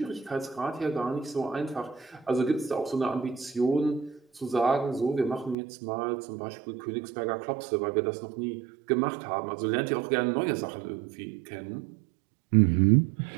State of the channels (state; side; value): drops out; left; at 5.6 s